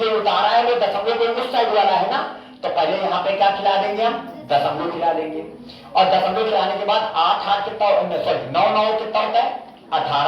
उतारा है वो दशमलव के उस साइड वाला है ना। तो पहले यहाँ पे क्या खिला देंगे? हम दशमलव खिला देंगे। और दशमलव खिलाने के बाद 8 8 कितना, सॉरी 9 9 कितना होता है?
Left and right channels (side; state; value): both; identical; correlation 1.00